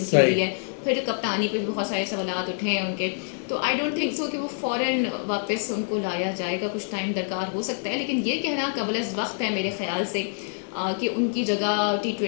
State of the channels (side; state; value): right; silent; 61 dB below the other